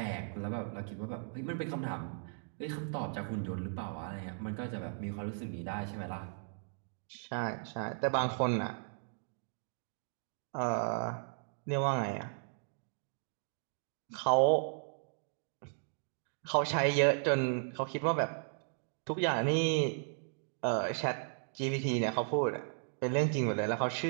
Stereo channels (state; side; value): silent; left; digital silence